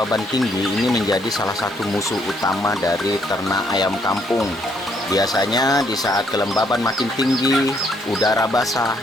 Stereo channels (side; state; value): both; normal; correlation 0.70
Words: tinggi ini menjadi salah satu musuh utama dari ternak ayam kampung. Biasanya di saat kelembaban makin tinggi, udara basah